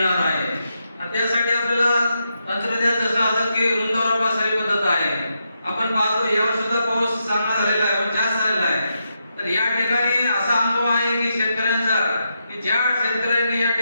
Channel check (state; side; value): inverted; both; correlation -0.84